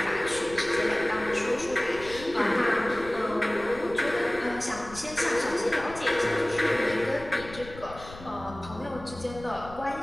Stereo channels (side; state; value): left; noise; rumble, 16 dB below the sound